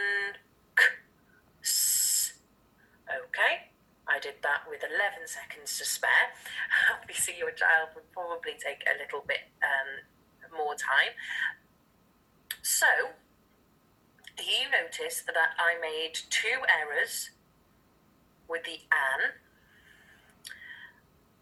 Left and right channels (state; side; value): identical; both; correlation 1.00